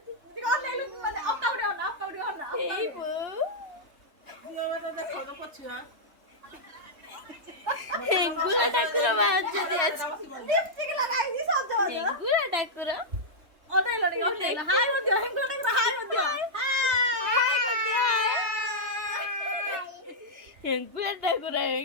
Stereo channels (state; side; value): late; left; 3.2 ms